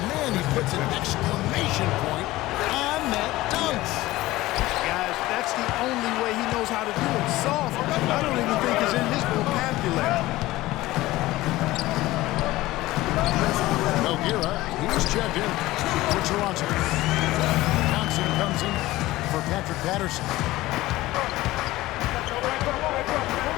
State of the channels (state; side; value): quieter; right; 17.8 dB